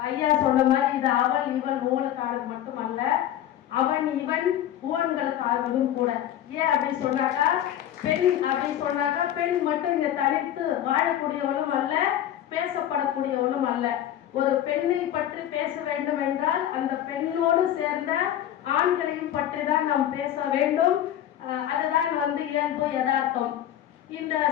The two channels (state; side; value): quieter; right; 11.5 dB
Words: ஐயா சொன்ன மாதிரி இது அவள் இவள் ஊழலுக்கானது மட்டுமல்ல, அவன் இவன் ஊழல்களுக்கானதும் கூட. ஏன் அப்படின்னு சொன்னாக்கா, பெண் அப்படின்னு சொன்னாக்கா பெண் மட்டும் இங்க தனித்து வாழக்கூடியவளும் அல்ல, பேசப்படக்கூடியவளும் அல்ல. ஒரு பெண்ணை பற்றி பேச வேண்டும் என்றால் அந்த பெண்ணோடு சேர்ந்த ஆண்களையும் பற்றி தான் நாம் பேச வேண்டும். அதுதான் இயல்பு யதார்த்தம். இந்த